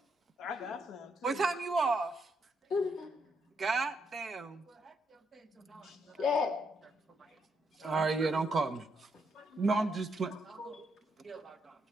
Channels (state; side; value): normal; both; correlation 0.77